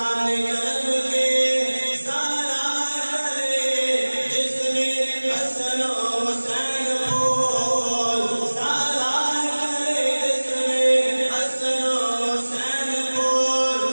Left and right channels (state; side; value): inverted; both; correlation -1.00